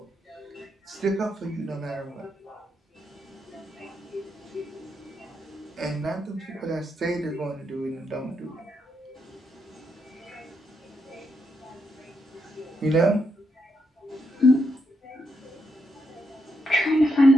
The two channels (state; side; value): normal; both; correlation 0.81